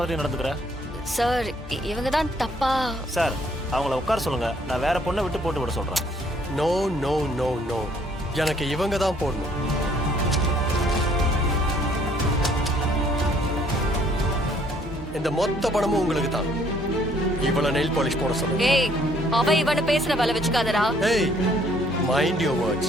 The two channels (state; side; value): normal; both; correlation 0.63